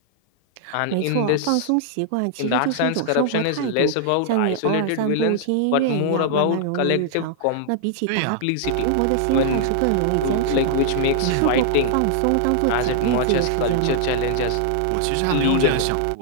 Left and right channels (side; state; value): both; different; correlation -0.01